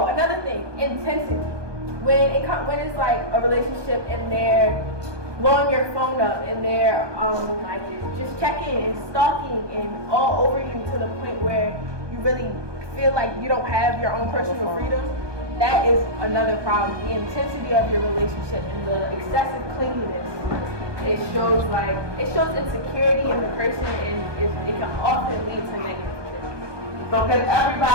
another thing, intensity. When it's like a relationship and they're blowing your phone up and they're like just checking and stalking and all over you to the point where you really feel like you don't have your own personal freedom, that is another problem. The intensity of your relationship and the excessive clinginess. It shows insecurity in the person and it can often lead to negative things. So can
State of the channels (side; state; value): left; late; 1.2 ms